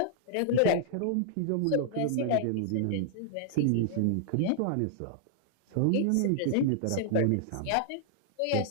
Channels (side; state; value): both; different; correlation -0.01